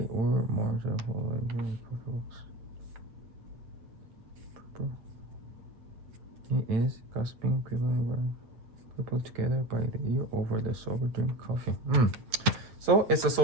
were marginal. He is gossiping people together by the ear over the sober drink coffee. So it's a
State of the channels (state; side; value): late; left; 8.9 ms